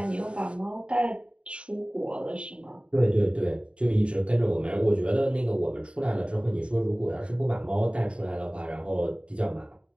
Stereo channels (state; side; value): late; left; 0.058 ms